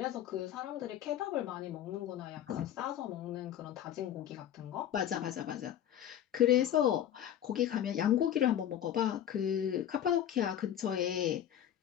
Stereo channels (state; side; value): quieter; right; 10.7 dB